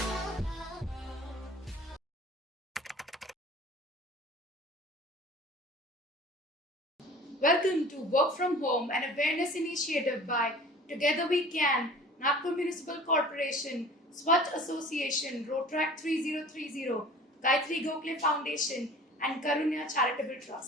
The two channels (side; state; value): both; normal; correlation 0.44